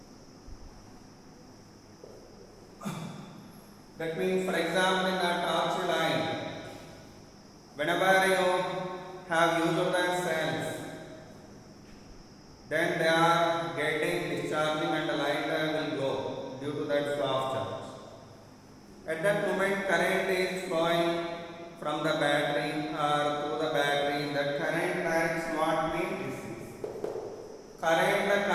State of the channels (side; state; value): both; identical; correlation 1.00